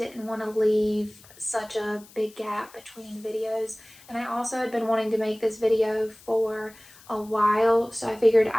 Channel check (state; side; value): noise; left; hiss, 23 dB below the sound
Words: want to leave such a big gap between videos. And I also had been wanting to make this video for a while, so I figured